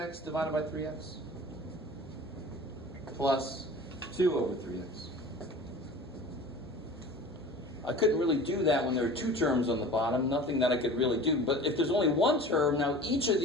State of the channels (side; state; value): both; normal; correlation 0.40